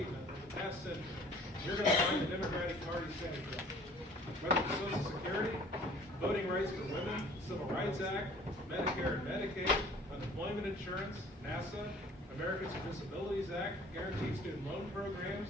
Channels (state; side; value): normal; both; correlation 0.51